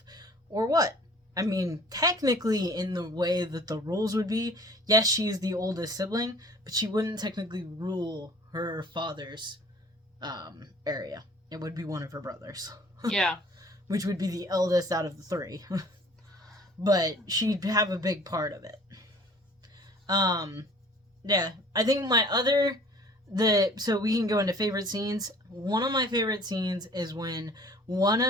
or what? Technically, in the way that the rules would be, yes, she's the oldest sibling, but she wouldn't technically rule her father's area. It would be one of her brothers. Yeah. Which would be the eldest out of the three. But she'd have a big part of it. Yeah. I think so we can go into favorite scenes. One of my favorite scenes is when one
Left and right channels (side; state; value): both; normal; correlation 0.50